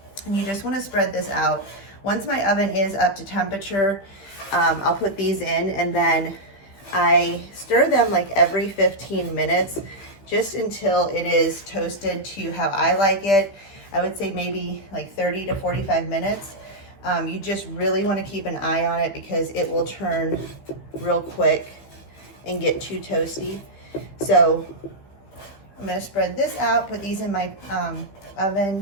And you just want to spread this out. Once my oven is up to temperature, I'll put these in, and then I stir them like every 15 minutes just until it is toasted to how I like it. I would say maybe like 30 to 45 minutes. You just really want to keep an eye on it because it will turn real quick and get too toasty. So I'm going to spread this out, put these in my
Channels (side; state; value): right; late; 15 ms